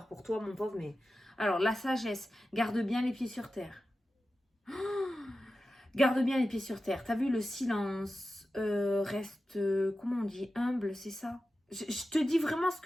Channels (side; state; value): both; normal; correlation 0.93